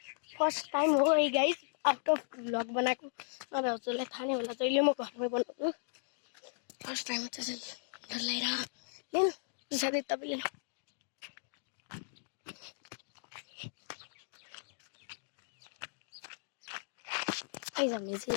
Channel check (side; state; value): right; silent; digital silence